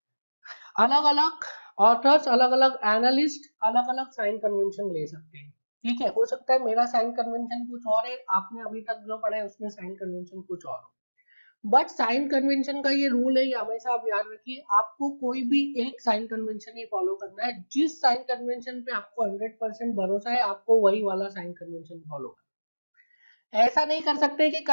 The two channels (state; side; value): inverted; both; correlation -1.00